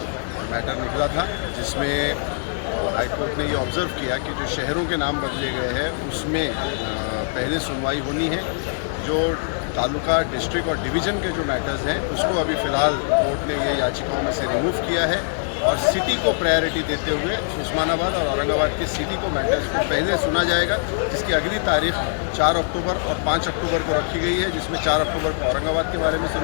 मैटर निकला था, जिसमें हाई कोर्ट ने ये ऑब्ज़र्व किया कि जो शहरों के नाम बदले गए हैं उसमें पहले सुनवाई होनी है। जो तालुका, डिस्ट्रिक्ट और डिवीज़न के जो मैटर्स हैं उसको अभी फ़िलहाल कोर्ट ने ये याचिकाओं में से रिमूव किया है और सिटी को प्रायोरिटी देते हुए उस्मानाबाद और औरंगाबाद के सिटी को मैटर्स को पहले सुना जाएगा, जिसकी अगली तारीख 4 अक्टूबर और 5 अक्टूबर को रखी गई है, जिसमें 4 अक्टूबर को औरंगाबाद के बारे में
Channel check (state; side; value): silent; right; 63 dB below the other